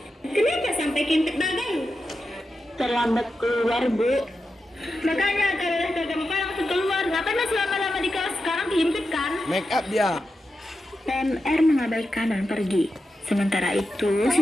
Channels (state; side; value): normal; both; correlation 0.89